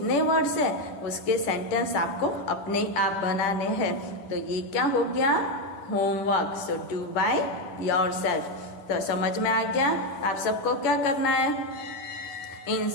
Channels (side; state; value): right; late; 11 ms